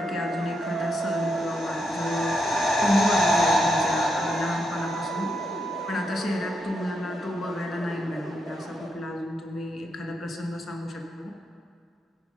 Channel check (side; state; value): both; normal; correlation 0.82